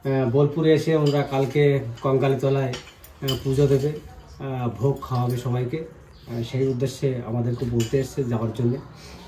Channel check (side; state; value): both; identical; correlation 1.00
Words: বোলপুরে এসে ওনারা কালকে কঙ্কালীতলায় পুজো দেবে ভোগ খাওয়াবে সবাইকে সেই উদ্দেশ্যে আমাদেরকে বলতে এসছে যাওয়ার জন্যে